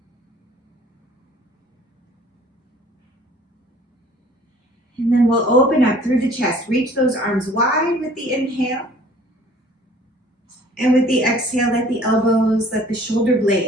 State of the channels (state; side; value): normal; both; correlation 0.53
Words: And then we'll open up through the chest. Reach those arms wide with the inhale. And with the exhale, let the elbows, let the shoulder